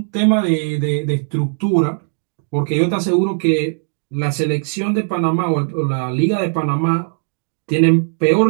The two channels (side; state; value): left; silent; digital silence